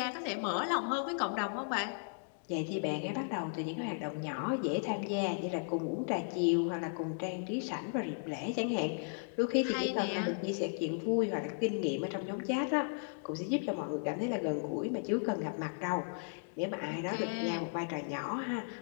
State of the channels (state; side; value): silent; right; digital silence